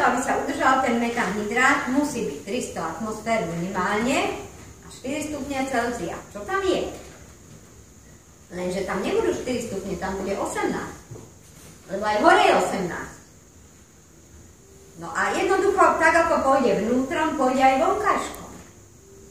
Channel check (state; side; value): identical; both; correlation 1.00